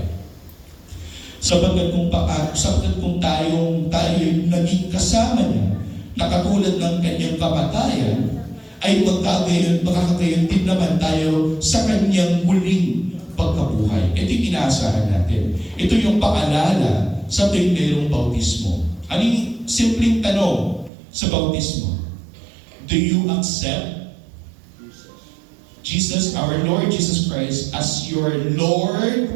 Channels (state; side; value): drops out; left; at 20.9 s